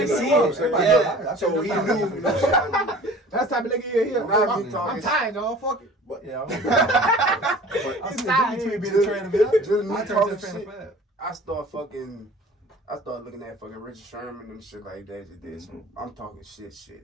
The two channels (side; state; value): both; normal; correlation 0.45